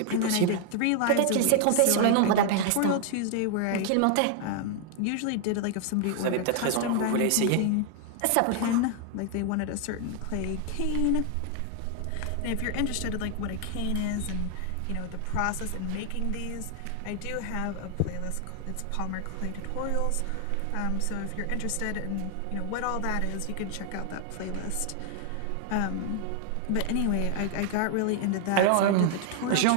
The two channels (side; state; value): both; different; correlation 0.00